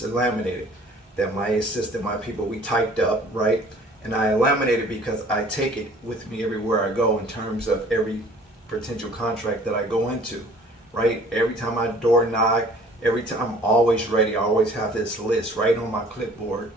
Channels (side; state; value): both; normal; correlation 0.52